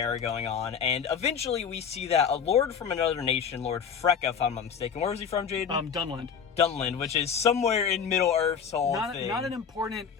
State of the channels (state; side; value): quieter; right; 7.0 dB